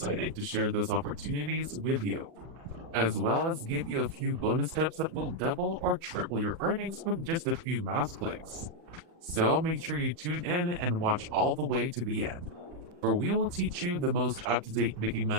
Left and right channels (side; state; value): left; late; 40 ms